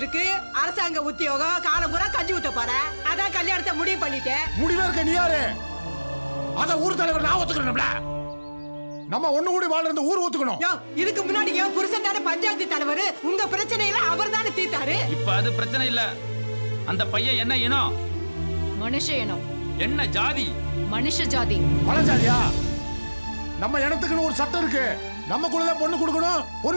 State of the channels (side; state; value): both; inverted; correlation -1.00